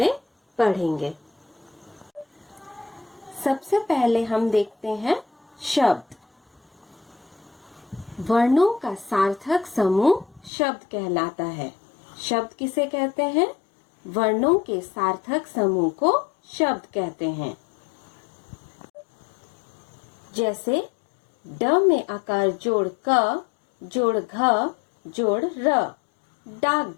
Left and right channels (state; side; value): drops out; right; at 10.5 s